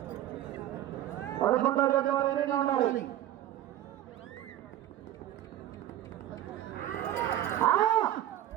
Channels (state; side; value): quieter; left; 12.7 dB